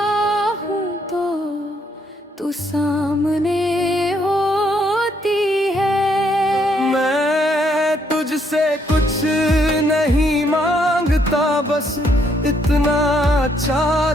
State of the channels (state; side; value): normal; both; correlation 0.71